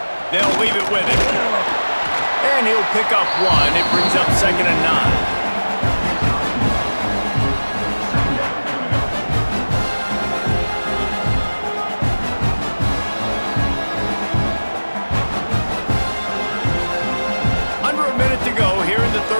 They'll leave it with him. And he'll pick up 1. It brings up 2nd and 9.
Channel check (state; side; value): inverted; both; correlation -1.00